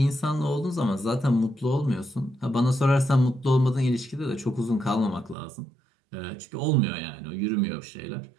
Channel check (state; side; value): drops out; left; at 5.4 s